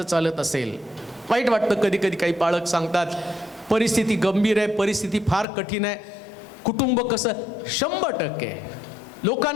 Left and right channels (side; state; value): right; drops out; at 5.5 s